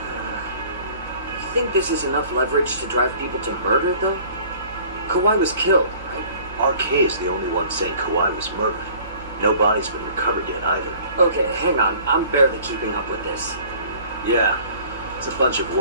You think this is enough leverage to drive people to murder, though? Kawai was killed, right? RK is the only one saying Kawai was murdered. No body's been recovered yet either. Okay, hang on. I'm barely keeping up with this. Yeah, it's a bunch of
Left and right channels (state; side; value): inverted; both; correlation -0.51